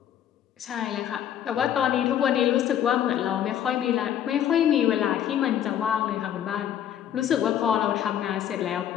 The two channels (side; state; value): right; quieter; 10.2 dB